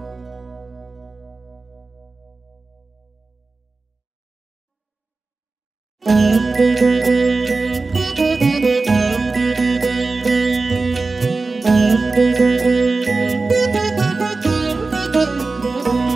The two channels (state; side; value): quieter; left; 3.8 dB